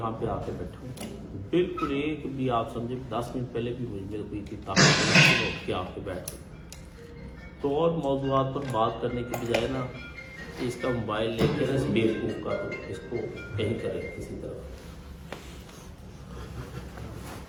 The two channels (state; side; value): identical; both; correlation 1.00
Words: پہ آ کے بیٹھا ہوں، بالکل ایک بھی آپ سمجھے 10 منٹ پہلے بھی میرے کوئی کتاب اٹھ کے آ کے بیٹھ گئی۔ تو اور موضوعات پر بات کرنے کے بجائے نا اس کا موبائل لے کے اس بیوقوف کا تو اس کو کہیں کرے کسی طرح۔